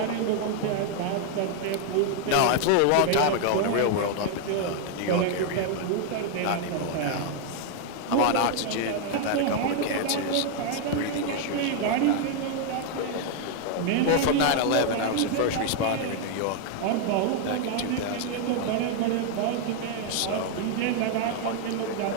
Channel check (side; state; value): both; different; correlation 0.00